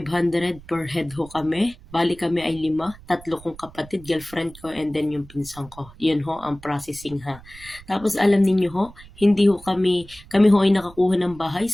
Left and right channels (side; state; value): right; noise; rumble, 20 dB below the sound